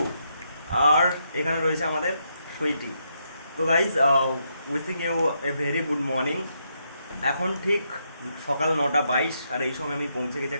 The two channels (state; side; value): inverted; both; correlation -0.79